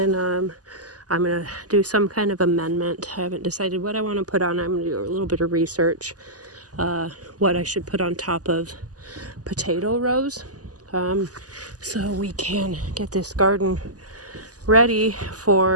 I'm going to do some kind of amendment. I haven't decided what I want to put on. I'm going to do a little bit of research, what I should put on top of potato rows, so we can get this garden ready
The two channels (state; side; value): late; left; 0.67 ms